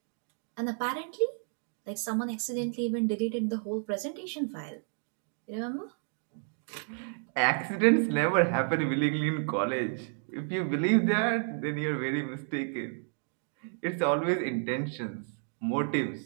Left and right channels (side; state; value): left; silent; 57 dB below the other